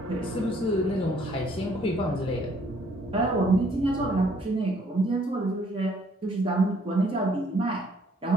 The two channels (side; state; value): both; normal; correlation 0.64